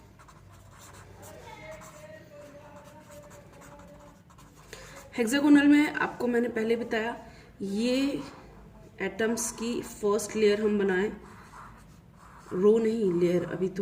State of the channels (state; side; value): identical; both; correlation 1.00